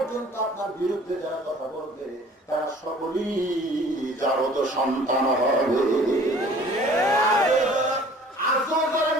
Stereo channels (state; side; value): normal; both; correlation 0.50